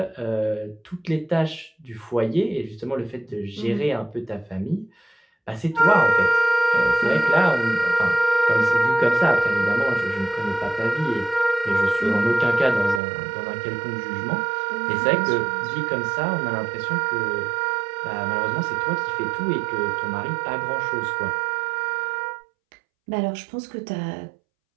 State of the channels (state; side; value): drops out; left; at 13.0 s